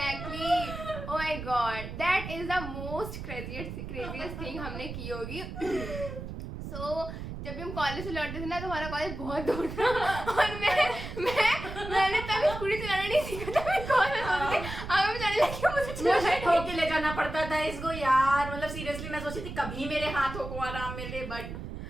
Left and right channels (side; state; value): right; noise; rumble, 8 dB below the sound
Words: Oh my God, that is the most craziest thing हमने की होगी. So जब भी हम कॉलेज से लौटते थे ना तो हमारा कॉलेज बहुत दूर था और मैंने तब स्कूटी चलाना नहीं सीखा था. मैं कॉलेज होती थी, अब मैं जाने लगी, मुझे ठोके ले जाना पड़ता था इसको यार. मतलब सीरियसली मैं सोची थी कभी मेरे हाथों को आराम मिले, बट